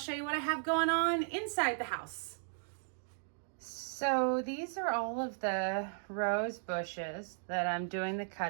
you what I have going on inside the house. So these are all of the rose bushes that I'm doing the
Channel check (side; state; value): left; silent; digital silence